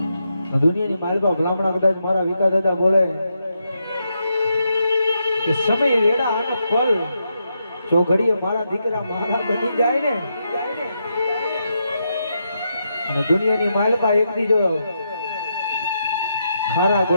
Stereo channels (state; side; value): inverted; both; correlation -0.83